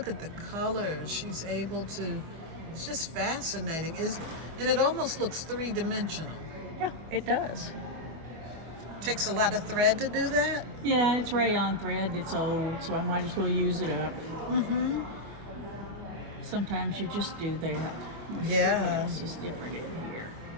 at the colors. She's able to. It's just fascinating. And it almost looks three-dimensional. Yeah, it does. Takes a lot of thread to do that. Yeah, it's rayon thread. It's old, so I might as well use it up. Mm-hmm. Sometimes you just do that. Let's see what else is different in here.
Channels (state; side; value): late; left; 25 ms